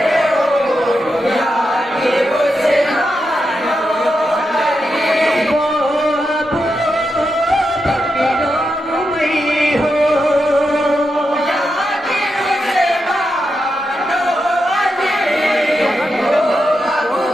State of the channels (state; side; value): normal; both; correlation 0.86